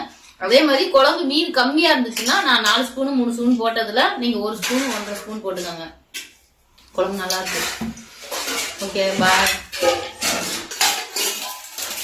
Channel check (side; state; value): both; identical; correlation 1.00